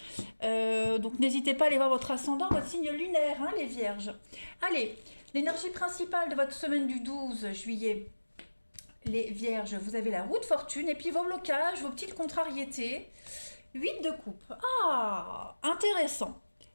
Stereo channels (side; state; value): both; inverted; correlation -1.00